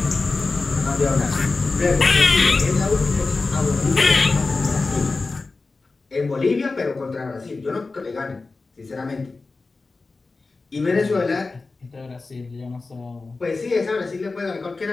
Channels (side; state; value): right; quieter; 3.8 dB